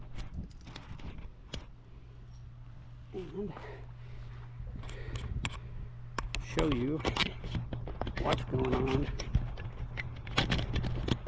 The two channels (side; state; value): both; identical; correlation 1.00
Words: And show you what's going on with